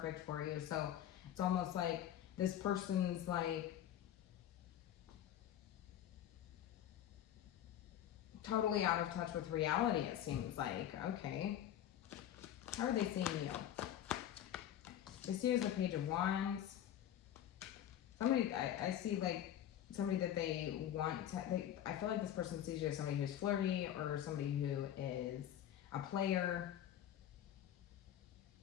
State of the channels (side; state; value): right; quieter; 11.0 dB